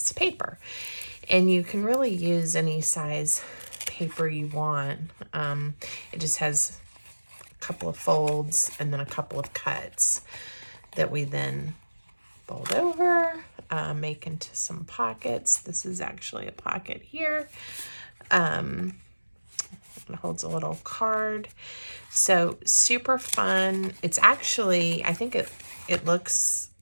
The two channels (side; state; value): both; inverted; correlation -1.00